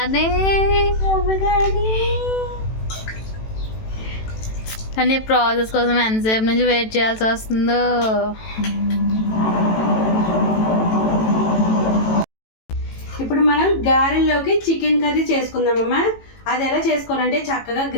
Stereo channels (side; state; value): right; late; 18 ms